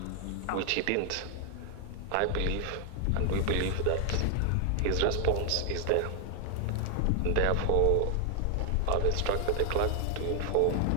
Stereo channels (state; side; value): different; both; correlation 0.00